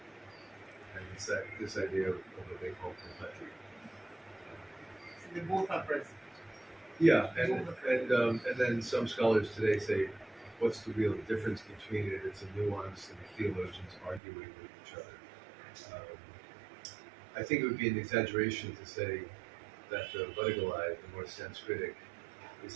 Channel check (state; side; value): drops out; left; at 14.2 s